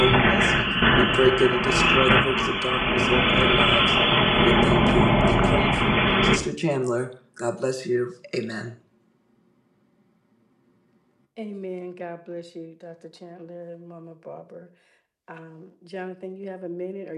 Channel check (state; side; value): identical; both; correlation 1.00